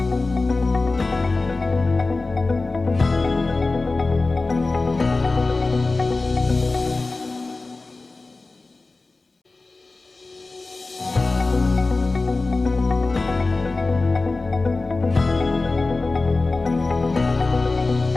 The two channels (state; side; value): quieter; right; 3.5 dB